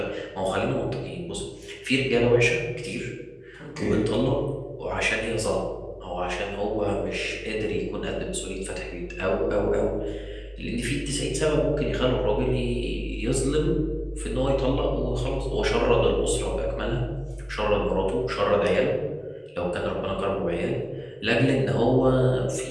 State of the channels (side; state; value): both; identical; correlation 1.00